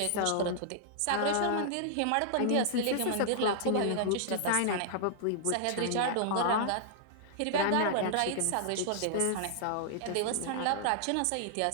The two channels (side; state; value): both; different; correlation -0.01